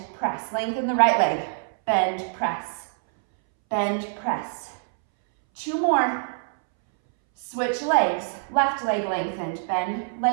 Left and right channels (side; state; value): left; silent; 62 dB below the other